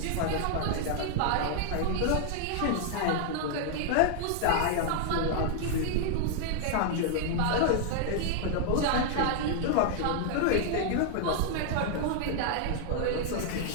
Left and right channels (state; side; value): different; both; correlation -0.01